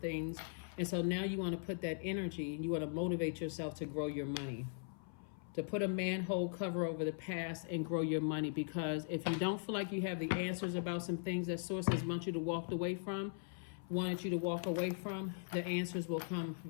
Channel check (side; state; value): right; silent; 51 dB below the other